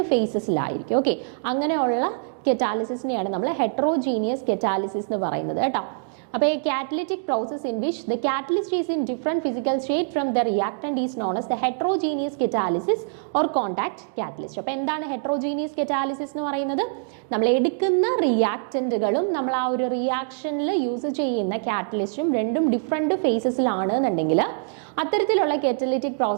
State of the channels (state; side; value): silent; left; digital silence